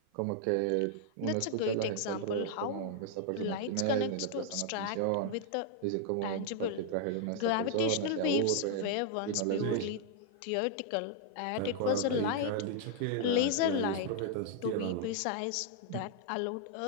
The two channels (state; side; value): different; both; correlation 0.00